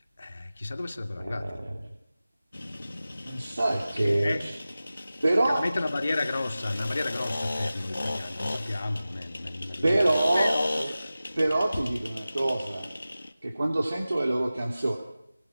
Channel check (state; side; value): inverted; both; correlation -0.96